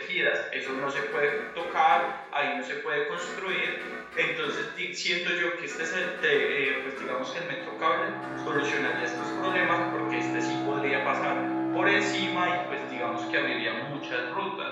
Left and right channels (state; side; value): identical; both; correlation 1.00